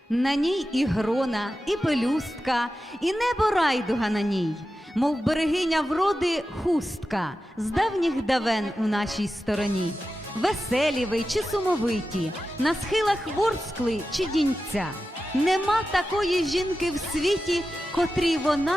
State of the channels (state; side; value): normal; both; correlation 0.92